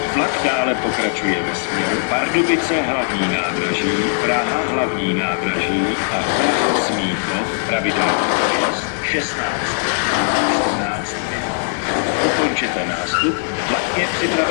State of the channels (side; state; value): right; silent; digital silence